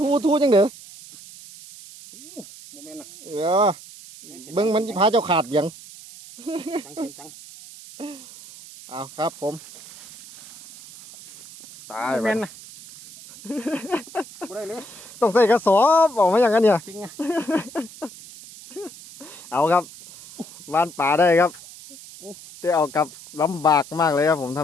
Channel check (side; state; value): right; noise; hiss, 17 dB below the sound